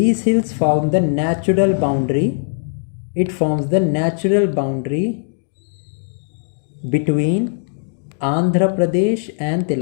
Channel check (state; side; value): silent; right; digital silence